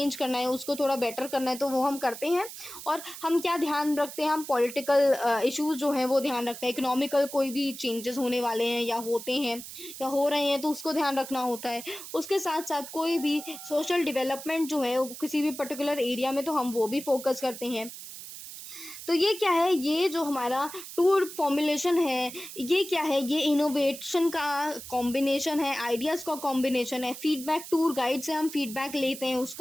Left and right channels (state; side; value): noise; right; hiss, 12 dB below the sound